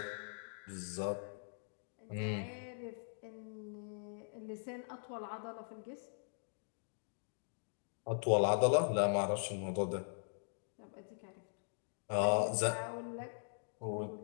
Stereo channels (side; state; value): right; silent; digital silence